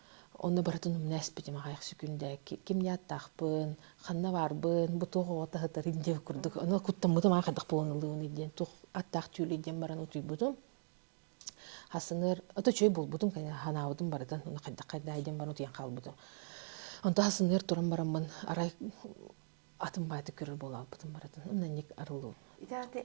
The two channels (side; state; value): left; silent; digital silence